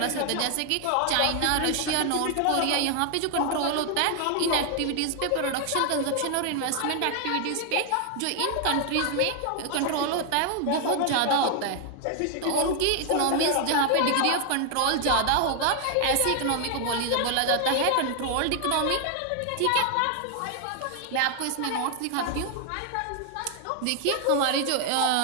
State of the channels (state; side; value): different; both; correlation 0.00